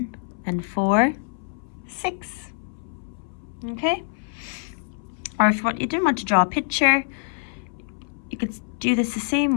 and 4, 6. Okay? Or if you didn't want to draw a picture, you could do this the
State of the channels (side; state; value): right; silent; 61 dB below the other